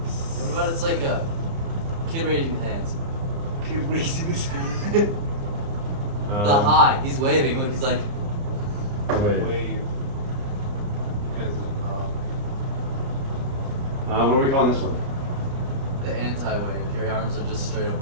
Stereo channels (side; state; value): left; late; 30 ms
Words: What about it's like a kid raising his hands? Kid raising his hand. The high. He's waving. Look, he's like. Wait. Wave. What are we calling this one? The anti-wave. Your arms are just straight up